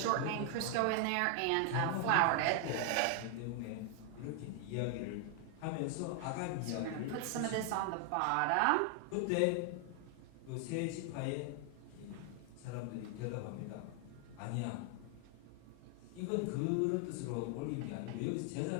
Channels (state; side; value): different; both; correlation 0.00